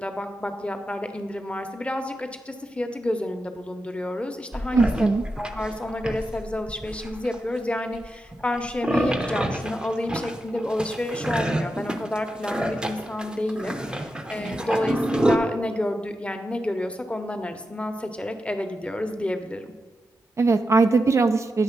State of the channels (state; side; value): normal; both; correlation 0.88